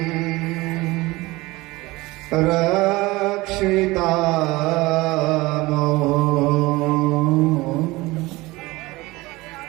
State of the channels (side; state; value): left; quieter; 20.9 dB